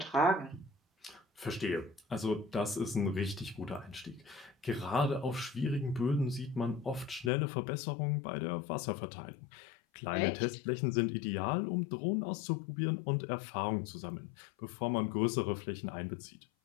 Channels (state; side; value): drops out; right; at 7.3 s